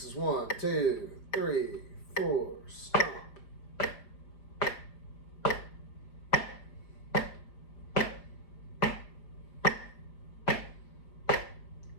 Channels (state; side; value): late; right; 5.0 ms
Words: is 1, 2, 3, 4, stomp.